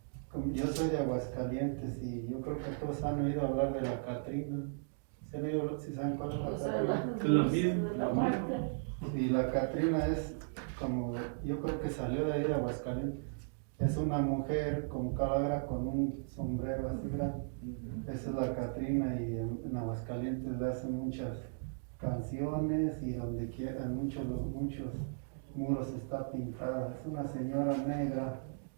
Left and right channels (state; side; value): silent; left; digital silence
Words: yo soy de Aguascalientes y yo creo que todos han oído hablar de la Catrina. ¿Sí saben cuál es la Catrina? Es la misma. Y la Catrina es como, yo creo que salió de ahí de Aguascalientes. Es una mujer con calavera con un sombrero así grande. Esa es la Catrina y en Aguascalientes le hacen muchas canciones y donde quiera, muchos muros está pintada. Es una señora negra,